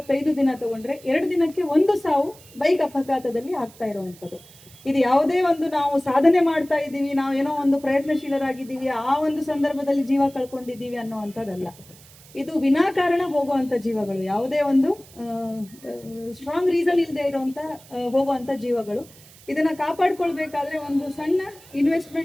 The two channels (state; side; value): noise; right; hiss, 23 dB below the sound